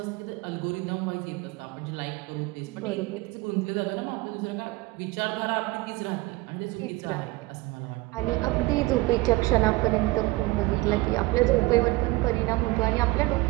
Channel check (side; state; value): left; quieter; 21.1 dB